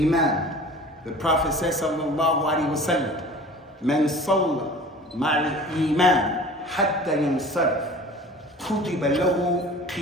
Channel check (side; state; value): both; normal; correlation 0.42